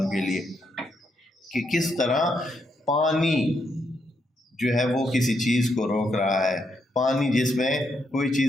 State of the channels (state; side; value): normal; both; correlation 0.78